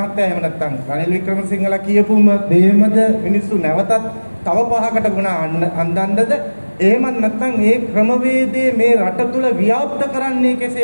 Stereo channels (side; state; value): both; inverted; correlation -1.00